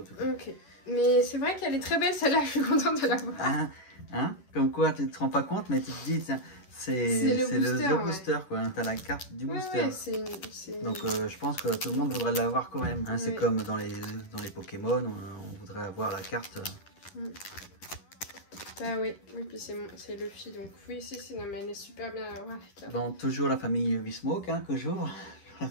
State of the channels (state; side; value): late; right; 11 ms